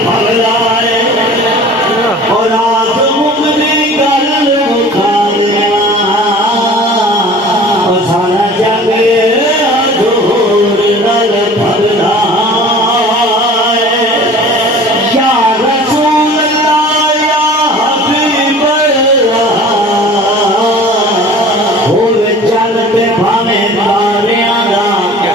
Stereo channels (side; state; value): both; normal; correlation 0.44